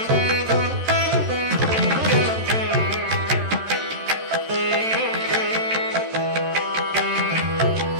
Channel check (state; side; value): late; left; 13 ms